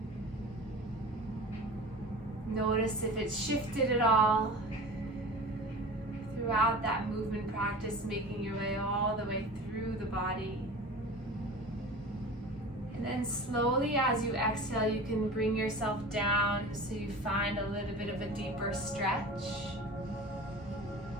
Notice if it's shifted at all throughout that movement practice, making your way all the way through the body. And then slowly as you exhale, you can bring yourself down so you find a little bit of a deeper stretch.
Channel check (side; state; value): both; normal; correlation 0.36